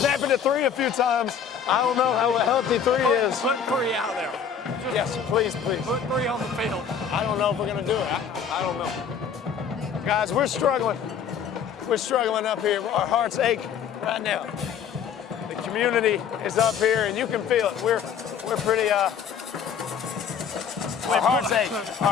it to 3 a few times. I don't know how healthy 3 is. Put 3 out there. Yes, please, please. Put 3 on the field. I don't know if we're going to do it. I don't know. Guys, we're struggling. We're struggling up here. Our hearts ache right now. The community is up here, and you can feel it. We're pretty, our hearts ache.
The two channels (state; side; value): quieter; right; 7.3 dB